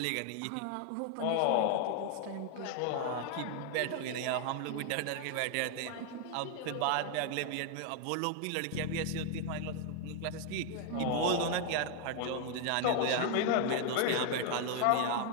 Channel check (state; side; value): different; both; correlation 0.00